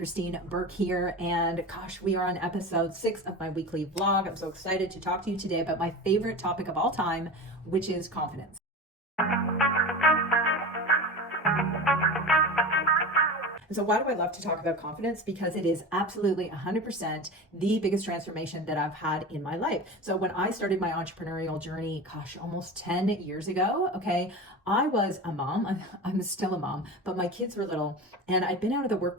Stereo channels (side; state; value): both; normal; correlation 0.29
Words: Burke here, and gosh, we are on episode 6 of my weekly vlog. I'm so excited to talk to you today about my favorite topic of all time, which is confidence. And so why do I love to talk about confidence? Because it is absolutely 100% the biggest transformation that I've had in my life. So when I started my entrepreneurial journey, almost 10 years ago, okay, I was a mom. I'm still a mom, but my kids were little and I'd been out of the